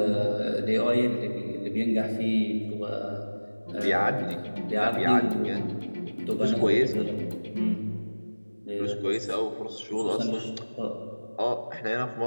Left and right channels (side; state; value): both; inverted; correlation -1.00